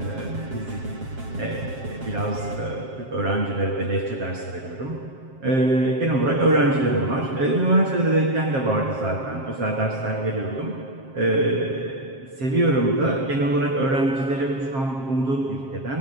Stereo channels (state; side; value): late; left; 7.5 ms